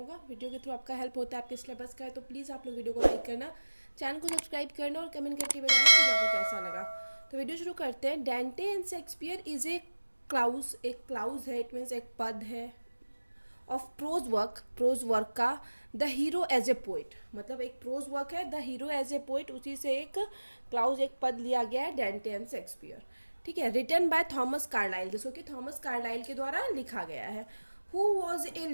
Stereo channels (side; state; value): both; inverted; correlation -1.00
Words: वीडियो के थ्रू आपका हेल्प होता है आपके सिलेबस का है, तो प्लीज़ आप लोग वीडियो को लाइक करना, चैनल को सब्सक्राइब करना और कमेंट करके बताना वीडियो आपको कैसा लगा। तो वीडियो शुरू करते हैं। Dante and Shakespeare is a clause, एक क्लाउज है, इट मीन्स एक पद है ऑफ प्रोज वर्क का the hero as a poet, मतलब एक प्रोज वर्क है the hero as a poet, उसी से एक क्लाउज एक पद लिया गया है डेंटे एंड शेक्सपियर। ठीक है, रिटन बाय थॉमस कार्लाइल, जिसको कि थॉमस कार्लाइल के द्वारा लिखा गया है। Who was a